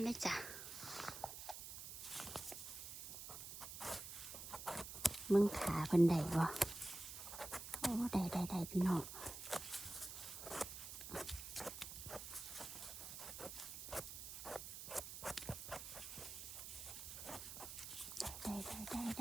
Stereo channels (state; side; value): noise; right; hiss, 8 dB below the sound